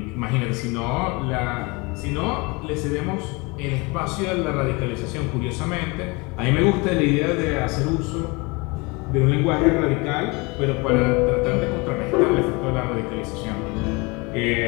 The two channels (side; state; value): right; quieter; 27.0 dB